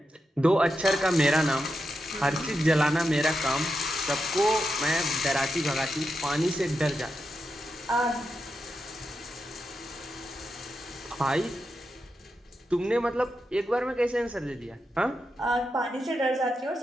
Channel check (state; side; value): normal; both; correlation 0.87